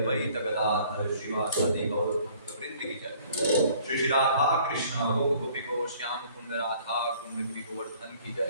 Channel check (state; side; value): inverted; both; correlation -0.56